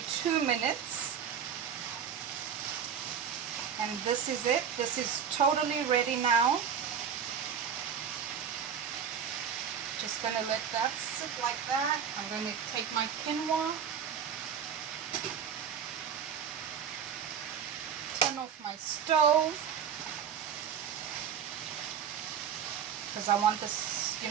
2 minutes. And this is it. This is totally ready now. Just gonna let that sit like that. I'm gonna take my quinoa, turn off my stove, because I want this, you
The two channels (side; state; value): left; quieter; 7.7 dB